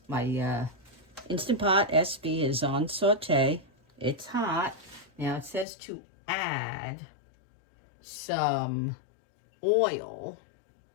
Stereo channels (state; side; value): drops out; right; at 5.7 s